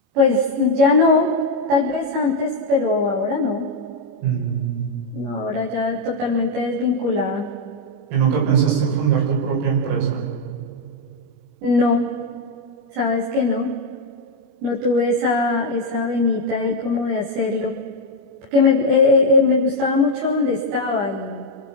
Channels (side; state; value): left; late; 25 ms